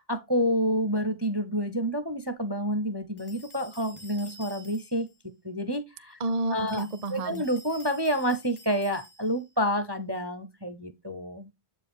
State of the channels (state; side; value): late; left; 1.1 ms